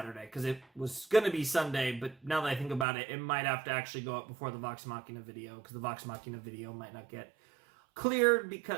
because it was going to be Sunday, but now that I think about it, it might have to actually go up before the Vox Machina video, because the Vox Machina video might not get cleared,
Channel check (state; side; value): drops out; left; at 2.9 s